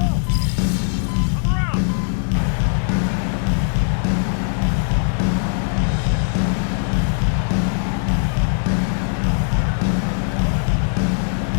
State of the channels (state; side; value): silent; right; digital silence